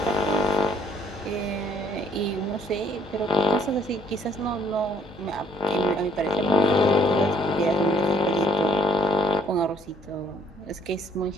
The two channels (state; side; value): normal; both; correlation 0.64